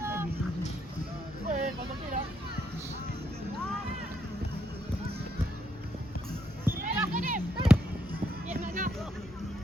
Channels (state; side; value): normal; both; correlation 0.76